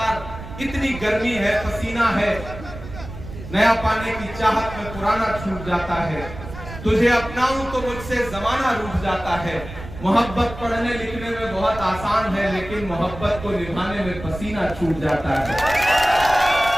इतनी गर्मी है, पसीना है, नया पाने की चाहत में पुराना छूट जाता है, तुझे अपनाऊं तो मुझसे जमाना रूठ जाता है। मोहब्बत पढ़ने लिखने में बहुत आसान है, लेकिन मोहब्बत को निभाने में पसीना छूट जाता है।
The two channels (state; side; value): noise; right; rumble, 12 dB below the sound